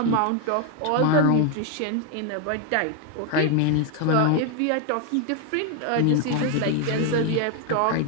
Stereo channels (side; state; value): both; different; correlation 0.00